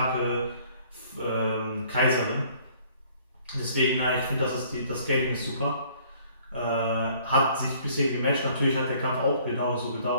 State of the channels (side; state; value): both; inverted; correlation -0.58